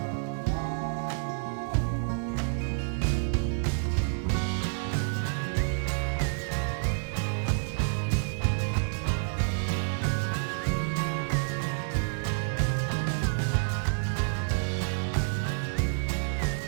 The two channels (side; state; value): left; silent; 59 dB below the other